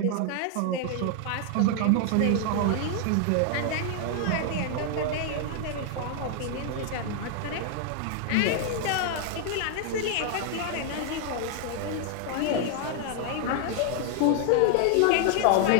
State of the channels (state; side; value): different; both; correlation 0.00